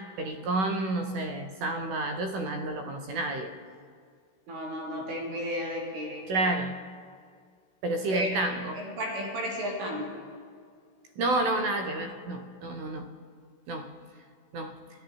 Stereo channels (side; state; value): left; late; 16 ms